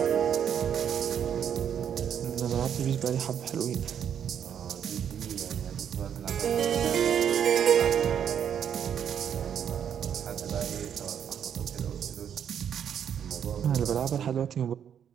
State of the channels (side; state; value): left; quieter; 8.7 dB